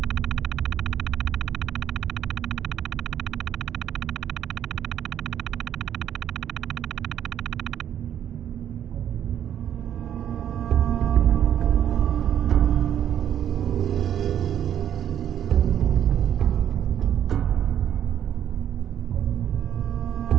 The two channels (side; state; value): left; quieter; 10.0 dB